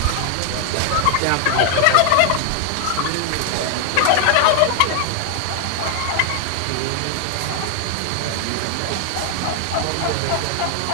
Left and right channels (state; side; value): different; both; correlation 0.00